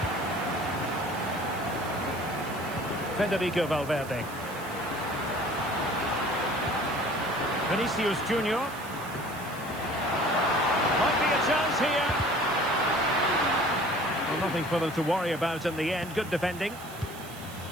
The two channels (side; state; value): right; noise; hiss, 17 dB below the sound